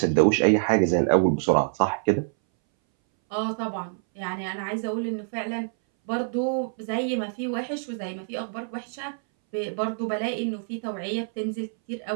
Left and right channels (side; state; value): left; silent; 60 dB below the other